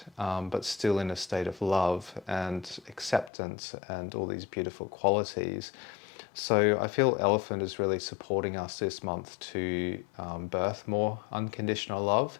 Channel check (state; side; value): drops out; right; at 3.3 s